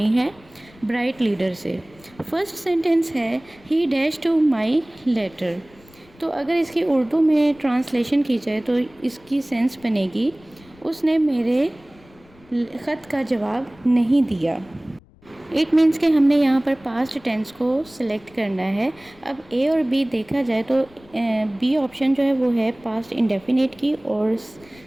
है ब्राइट लीडर से। फर्स्ट सेंटेंस है he dash to my letter. तो अगर इसकी उर्दू में ट्रांसलेशन की जाए तो इसकी सेंस बनेगी उसने मेरे ख़त का जवाब नहीं दिया। इट मीन्स कि हमने यहाँ पर पास्ट टेंस को सिलेक्ट करना है। अब ए और बी देखा जाए तो बी ऑप्शन जो है वो है पास्ट इंडेफिनिट की और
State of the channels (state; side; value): noise; left; rumble, 27 dB below the sound